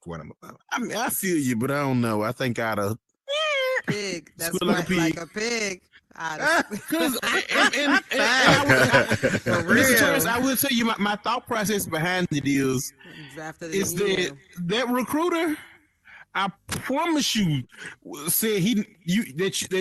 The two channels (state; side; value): identical; both; correlation 1.00